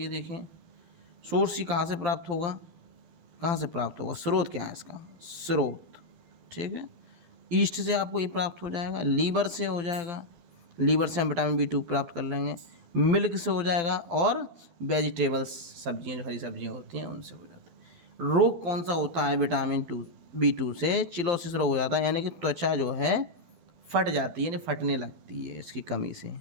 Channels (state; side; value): late; left; 12 ms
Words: देखें सोर्स ही कहाँ से प्राप्त होगा, कहाँ से प्राप्त होगा, स्रोत क्या है इसका, स्रोत, ठीक है। ईस्ट से आपको ये प्राप्त हो जाएगा, लीवर से हो जाएगा, लीवर से हम विटामिन B2 प्राप्त कर लेंगे, मिल्क से हो जाएगा, और वेजिटेबल्स सब्जियां, जो हरी सब्जियां होती हैं उनसे हो जाता है। रोग कौन सा होता है विटामिन B2 से, चिलोसिस रोग हो जाता है, यानी कि त्वचा जो है फट जाती है, यानी फटने लगती है इसकी कमी से,